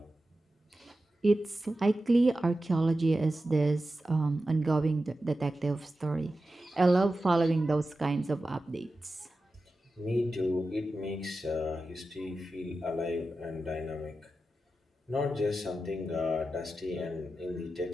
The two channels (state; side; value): normal; both; correlation 0.92